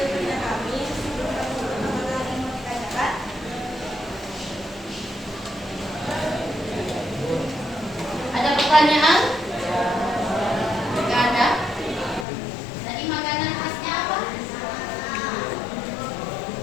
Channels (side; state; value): right; drops out; at 12.2 s